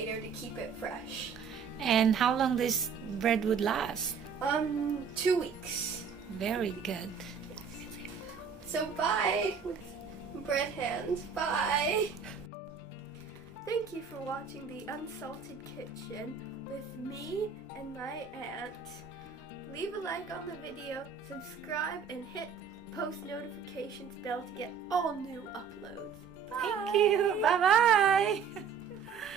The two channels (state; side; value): quieter; left; 6.4 dB